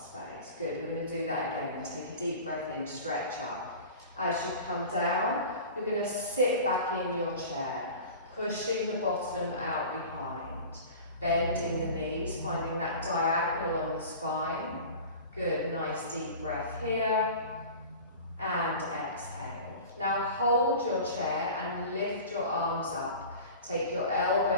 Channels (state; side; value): inverted; both; correlation -0.38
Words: Good, we're going to do that again. Take a deep breath in, stretch up. As you come down, you're going to sit back in your chair, pushing the bottom out behind, bending the knees, finding that diagonal on the spine. Good, nice deep breath here, and exhale. Now hold your chair and lift your arms up. Take your